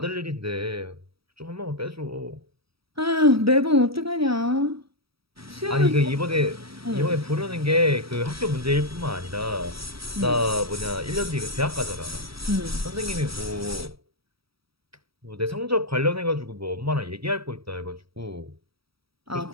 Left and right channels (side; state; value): left; late; 0.76 ms